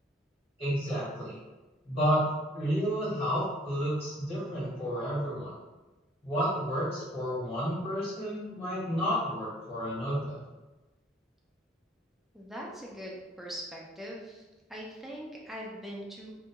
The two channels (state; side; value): normal; both; correlation 0.57